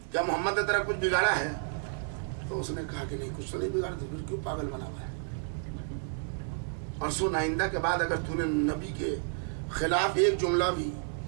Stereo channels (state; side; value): silent; left; digital silence